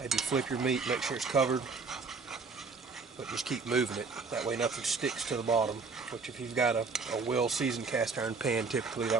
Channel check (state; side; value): quieter; left; 4.5 dB